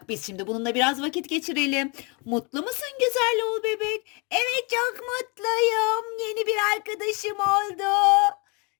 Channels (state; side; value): quieter; right; 31.2 dB